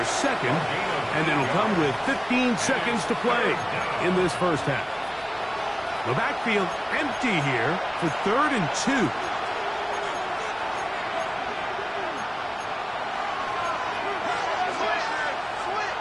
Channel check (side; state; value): both; identical; correlation 1.00